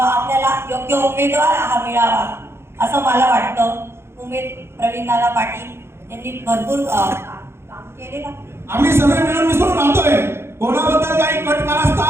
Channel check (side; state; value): left; late; 0.12 ms